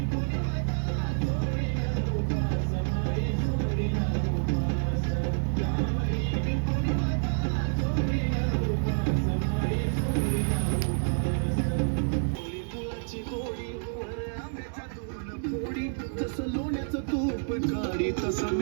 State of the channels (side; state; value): left; silent; digital silence